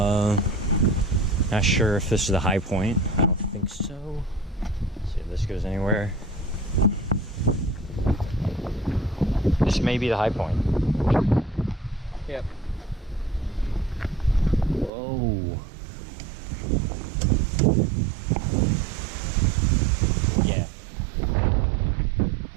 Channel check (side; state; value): left; drops out; at 14.9 s